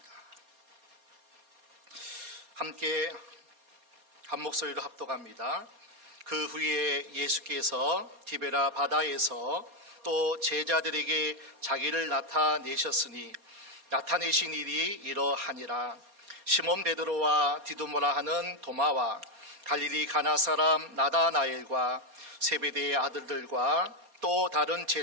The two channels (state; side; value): late; left; 4.2 ms